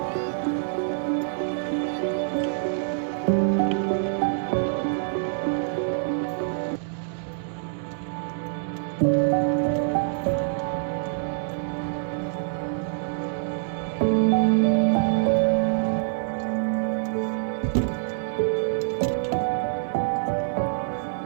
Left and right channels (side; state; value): left; silent; digital silence